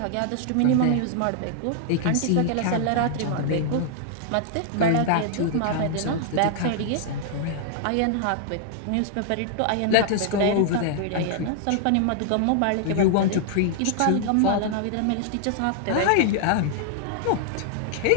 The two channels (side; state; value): both; different; correlation 0.00